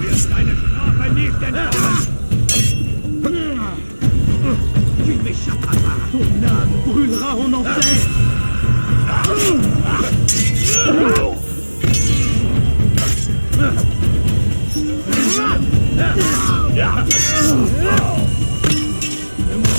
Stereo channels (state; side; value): inverted; both; correlation -1.00